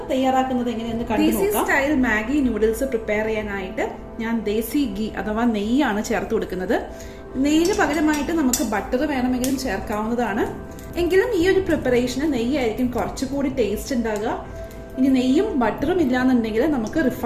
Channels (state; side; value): identical; both; correlation 1.00